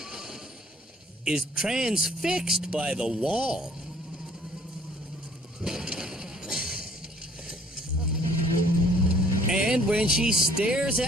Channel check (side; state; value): both; normal; correlation 0.59